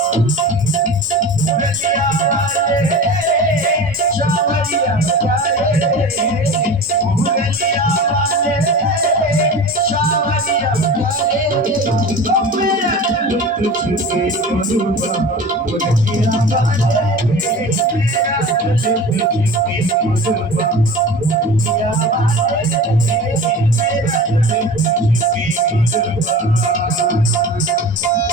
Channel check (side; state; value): both; normal; correlation 0.35